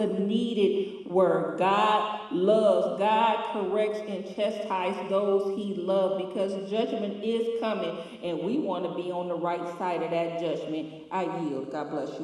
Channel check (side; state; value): both; identical; correlation 1.00